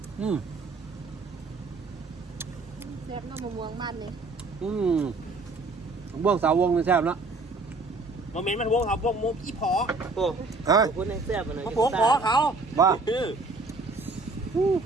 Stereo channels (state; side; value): quieter; left; 3.5 dB